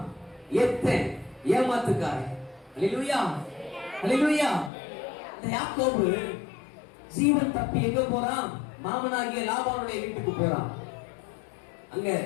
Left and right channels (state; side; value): drops out; right; at 4.7 s